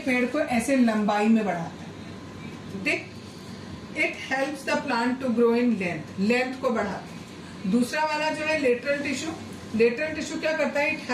पेड़ को ऐसे लंबाई में बढ़ाता है, ठीक। It helps the plant to grow in length को बढ़ाता है। दूसरा वाला जो है लेटरल टिश्यू क्या करता है, it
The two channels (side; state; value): both; identical; correlation 1.00